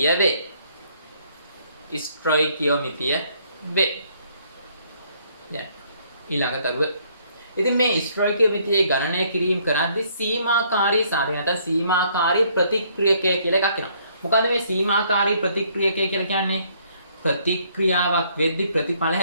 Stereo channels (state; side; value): inverted; both; correlation -0.66